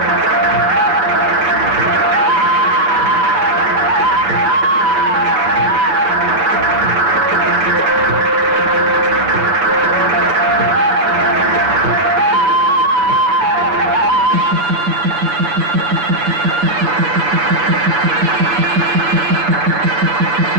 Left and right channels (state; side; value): late; left; 7.1 ms